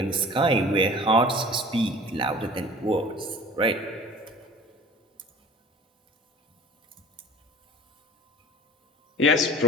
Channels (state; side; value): normal; both; correlation 0.43